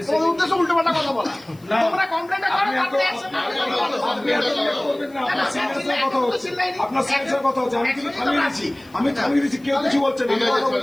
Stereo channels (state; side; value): noise; left; hiss, 29 dB below the sound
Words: তোমার উদ্দেশ্য উল্টো পাল্টা কথা বলা। তোমরা কমপ্লেনটা করো, তারপরে action করবেন না, আপনার সিনিয়রের কথা হচ্ছে, আপনার সিনিয়রের কথা হচ্ছে, আমি কিন্তু থামিয়ে দিচ্ছি, কেউ কিছু বলছেন না,